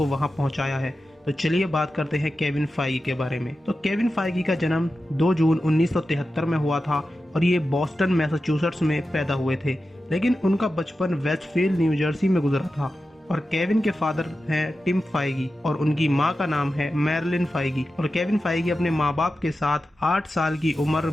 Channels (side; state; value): both; normal; correlation 0.92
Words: वहां पहुंचाया है। तो चलिए बात करते हैं केविन फाइगी के बारे में। तो केविन फाइगी का जन्म 2 जून 1973 में हुआ था और ये बॉस्टन मैसाचुसेट्स में पैदा हुए थे, लेकिन उनका बचपन वेस्टफील्ड न्यू जर्सी में गुजरा था। और केविन के फादर हैं टिम फाइगी और उनकी माँ का नाम है मैरिलिन फाइगी। और केविन फाइगी अपने माँ बाप के साथ 8 साल की उम्र